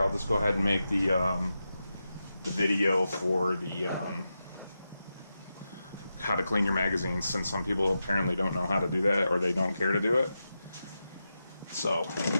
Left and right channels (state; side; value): inverted; both; correlation -0.89